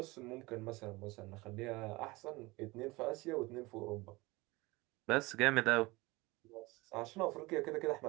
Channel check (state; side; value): quieter; left; 22.4 dB